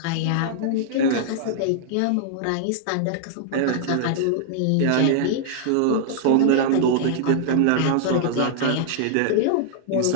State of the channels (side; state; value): both; different; correlation -0.01